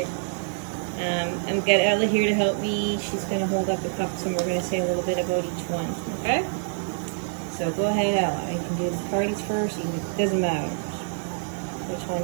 I've got Ella here to help me. She's going to hold up the pups and we're going to say a little bit about each one. Okay? So, go ahead, Ella. You can do the parties first. It doesn't matter which one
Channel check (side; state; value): left; silent; 61 dB below the other